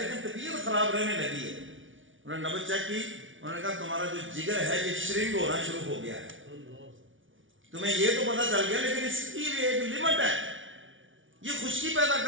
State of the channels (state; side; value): late; left; 0.57 ms